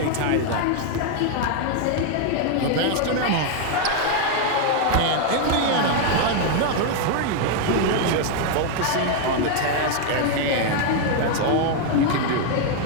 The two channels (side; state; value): both; different; correlation 0.00